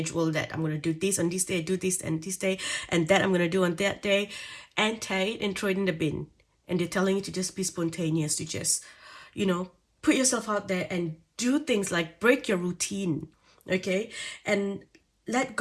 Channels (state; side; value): identical; both; correlation 1.00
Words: that I'm going to do this on this day, do this and this day, and that I'm going to do on that day, and tie it and throw it in the bin. And they're telling you to just be spontaneous, to just, put yourself out there and do things like break your routine, okay? And let